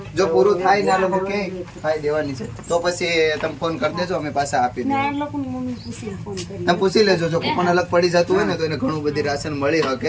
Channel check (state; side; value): identical; both; correlation 1.00